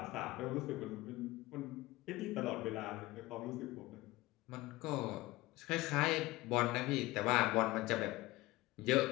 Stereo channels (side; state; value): right; quieter; 19.4 dB